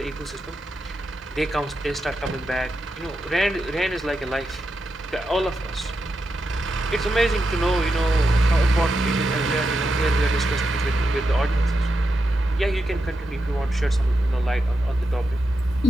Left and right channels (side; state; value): both; normal; correlation 0.87